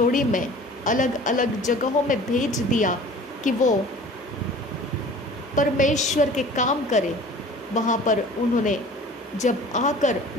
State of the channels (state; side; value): normal; both; correlation 0.44